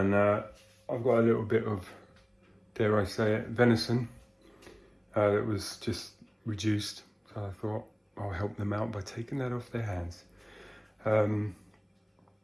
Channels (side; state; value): both; identical; correlation 1.00